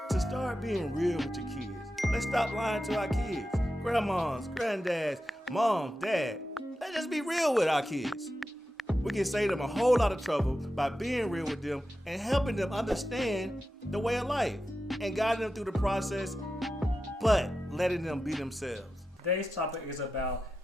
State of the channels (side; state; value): both; normal; correlation 0.91